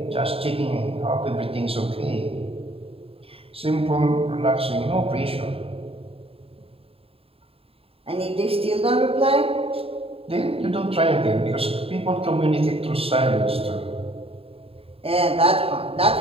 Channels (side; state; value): left; late; 0.27 ms